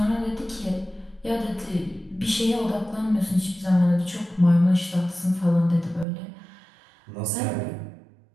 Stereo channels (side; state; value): left; drops out; at 6.1 s